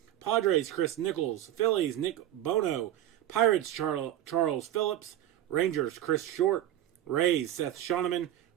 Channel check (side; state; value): left; quieter; 12.7 dB